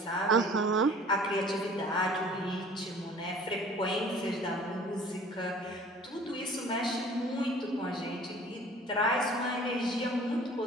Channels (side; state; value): both; normal; correlation 0.49